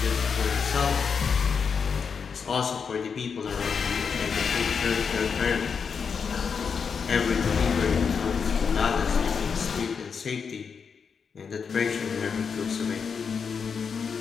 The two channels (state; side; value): quieter; right; 6.1 dB